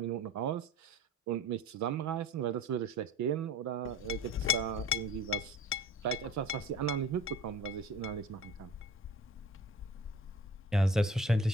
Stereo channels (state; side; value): normal; both; correlation 0.41